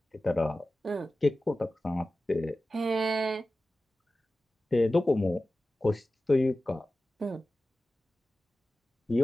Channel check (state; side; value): normal; both; correlation 0.95